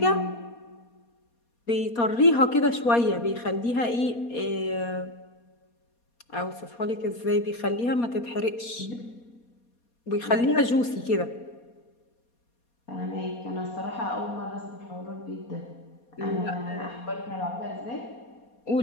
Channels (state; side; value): late; right; 4.2 ms